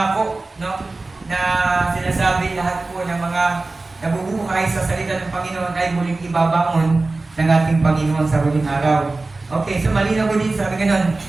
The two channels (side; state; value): left; quieter; 3.3 dB